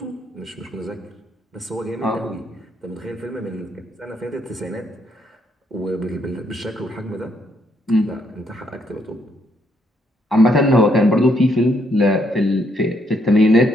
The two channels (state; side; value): normal; both; correlation 0.73